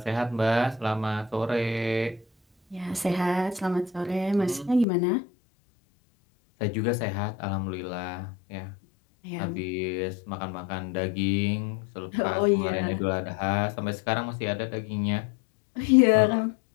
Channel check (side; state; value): right; drops out; at 4.9 s